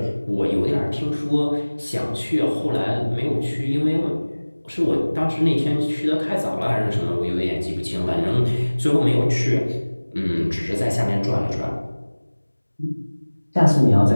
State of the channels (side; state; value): both; inverted; correlation -1.00